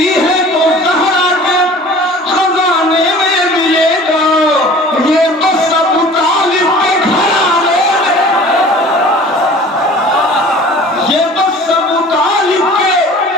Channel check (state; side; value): normal; both; correlation 0.45